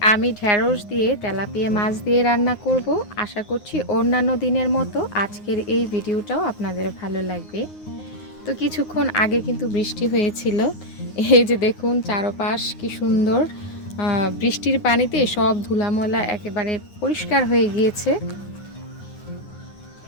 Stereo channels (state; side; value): late; right; 9.6 ms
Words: আমি ঢেঁড়স দিয়ে তেলাপিয়া মাছ দিয়ে রান্না করব। আশা করছি অন্যান্য দিনের মতো আজকের এই ভিডিওটাও আপনাদের ভালো লাগবে। তো কিছুক্ষণ আগে কিন্তু বৃষ্টি হয়েছিল। এই যে দেখুন চারপাশ কি সুন্দর, বৃষ্টির পানিতে সব ধুলাময়লা একেবারে পরিষ্কার হয়ে গিয়েছে।